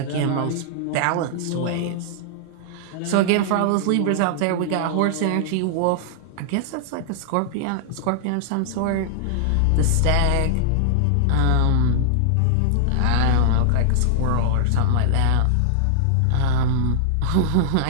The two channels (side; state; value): both; different; correlation -0.01